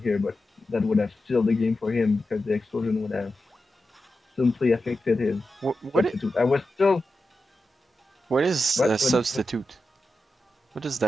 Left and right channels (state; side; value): normal; both; correlation 0.91